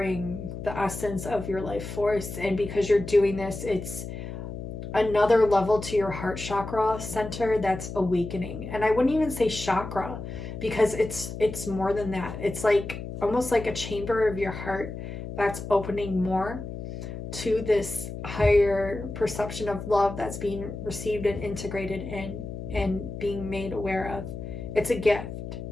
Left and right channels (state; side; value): noise; left; hum, 8 dB below the sound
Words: the essence of your life force. And because you're doing this, it's another level to your heart chakra center that's awakening. And I wouldn't even say chakra, because it's more than that. It's like almost like a chamber of your heart that's opening more to this higher perception of love that's being received and integrated in and being made aware of. It's a gift,